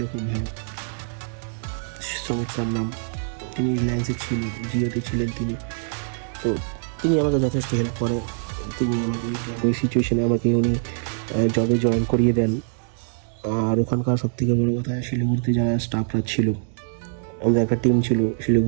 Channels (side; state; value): left; silent; digital silence